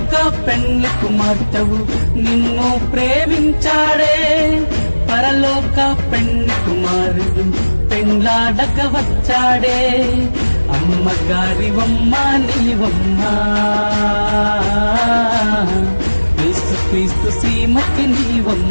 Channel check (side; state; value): both; inverted; correlation -1.00